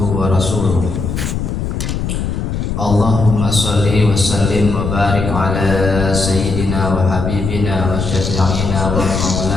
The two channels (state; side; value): noise; left; rumble, 3 dB below the sound